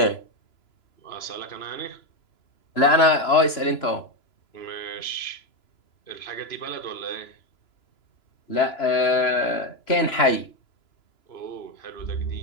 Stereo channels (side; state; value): right; late; 3.0 ms